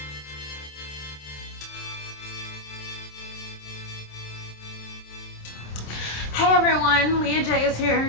Hey everyone, Leah J is here,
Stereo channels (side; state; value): right; late; 27 ms